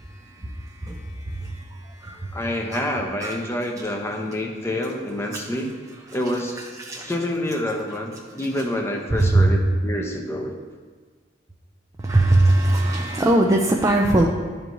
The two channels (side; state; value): both; normal; correlation 0.79